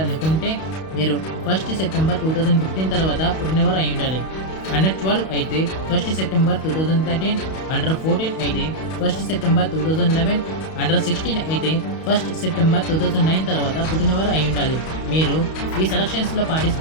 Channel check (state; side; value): late; right; 31 ms